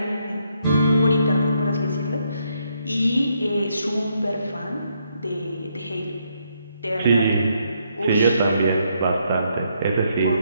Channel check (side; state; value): both; inverted; correlation -0.75